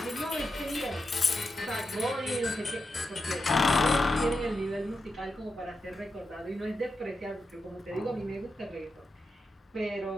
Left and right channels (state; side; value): normal; both; correlation 0.88